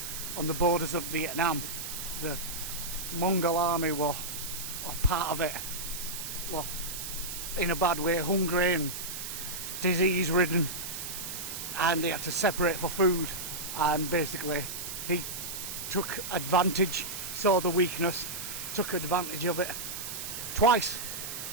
on the borders of Vietnam. The Mongol army were part of it. Well, in a bad way, hungry and disease ridden, and they had to separate for food, and basically he took advantage, saw the weakness, took advantage of it twice.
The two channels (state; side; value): noise; right; hiss, 6 dB below the sound